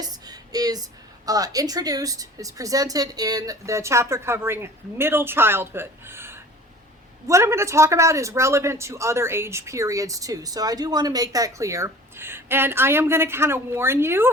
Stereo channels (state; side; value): normal; both; correlation 0.44